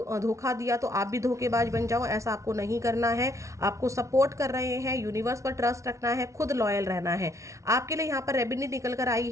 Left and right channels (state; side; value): late; left; 0.14 ms